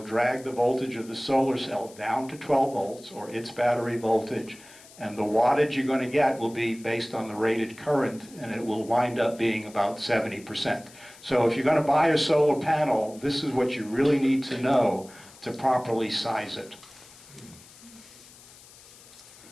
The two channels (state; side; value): noise; left; hiss, 22 dB below the sound